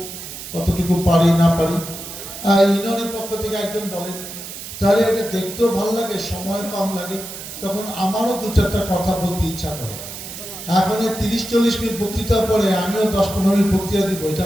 কতটুকু পারি না পারি। ইউনিয়নের পক্ষ থেকে একজন বলেন, তাহলে এটা দেখতেও ভালো লাগে, সময় কম লাগে, তখন আমারও 2-4টা কথা বলতে ইচ্ছা করে। এখন 30-40 মিনিট বক্তৃতার পরে আমিও 10-15 মিনিট বক্তৃতা দিব, এটা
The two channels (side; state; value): right; noise; hiss, 11 dB below the sound